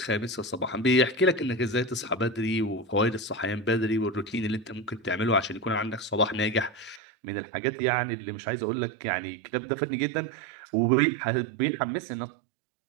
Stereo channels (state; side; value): drops out; left; at 7.0 s